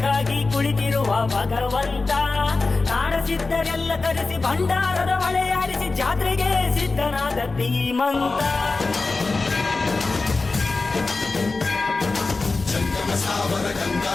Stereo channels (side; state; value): right; quieter; 3.7 dB